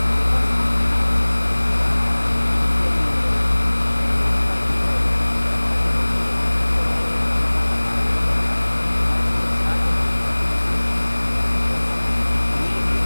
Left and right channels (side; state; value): both; inverted; correlation -1.00